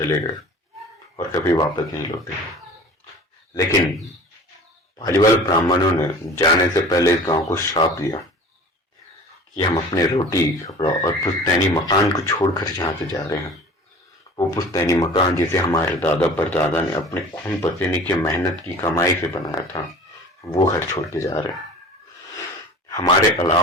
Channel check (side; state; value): both; normal; correlation 0.42